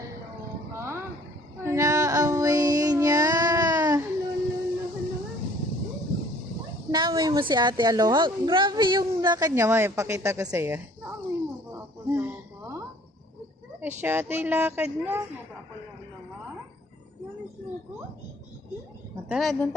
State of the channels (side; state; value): both; normal; correlation 0.55